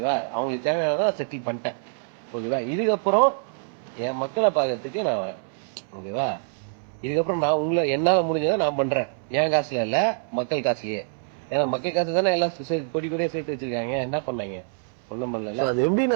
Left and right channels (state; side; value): silent; left; 61 dB below the other